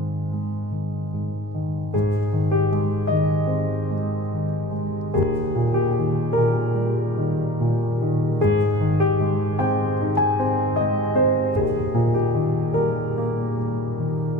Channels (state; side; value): normal; both; correlation 0.43